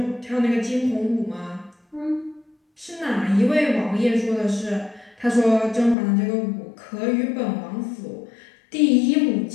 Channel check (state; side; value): drops out; right; at 6.0 s